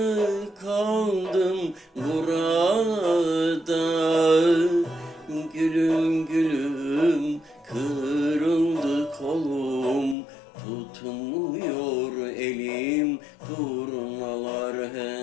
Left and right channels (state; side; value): drops out; right; at 10.2 s